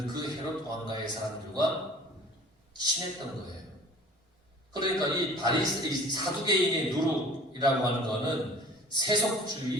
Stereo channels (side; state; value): both; normal; correlation 0.46